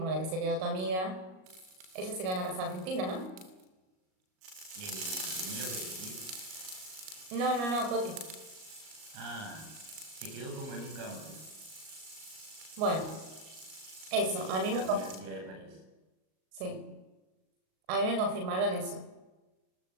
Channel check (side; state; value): left; late; 38 ms